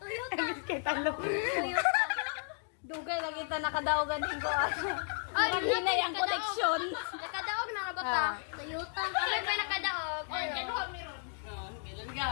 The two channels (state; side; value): silent; right; 55 dB below the other